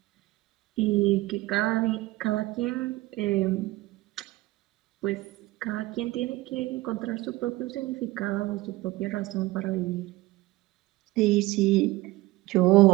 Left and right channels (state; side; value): quieter; left; 19.2 dB